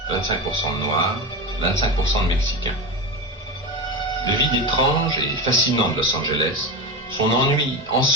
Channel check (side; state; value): both; normal; correlation 0.21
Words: 25% de noirs, 25% de mexicains. Le vide étrange et fascinant de Los Angeles, son ennui